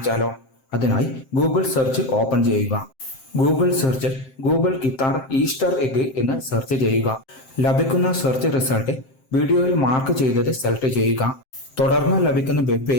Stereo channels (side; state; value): right; late; 7.6 ms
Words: അതിനായി ഗൂഗിൾ സെർച്ച് ഓപ്പൺ ചെയ്യുക. ഗൂഗിൾ സെർച്ചിൽ ഗൂഗിൾ ഗിത്താർ ഈസ്റ്റർ എഗ് എന്ന് സെർച്ച് ചെയ്യുക. ലഭിക്കുന്ന സെർച്ച് റിസൾട്ട് വീഡിയോയിൽ മാർക്ക് ചെയ്തത് സെലക്ട് ചെയ്യുക. തുടർന്ന് ലഭിക്കുന്ന വെബ്